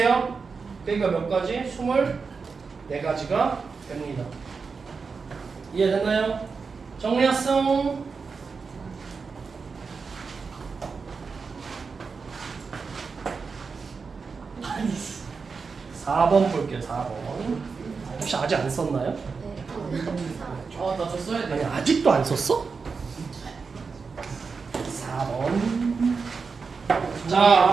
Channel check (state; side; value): quieter; left; 5.0 dB